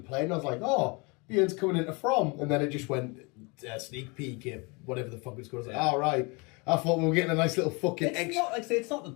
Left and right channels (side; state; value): right; quieter; 29.2 dB